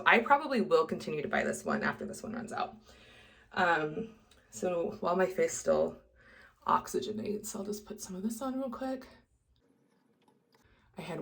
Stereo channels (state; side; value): identical; both; correlation 1.00